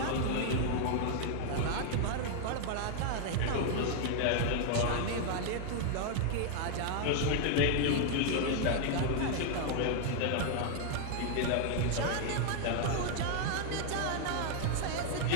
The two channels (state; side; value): different; both; correlation 0.00